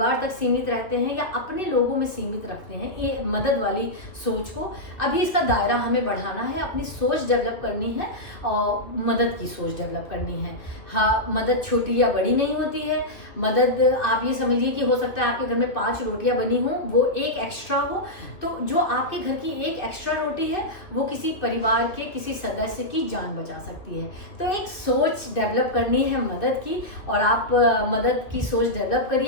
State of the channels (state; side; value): late; right; 2.4 ms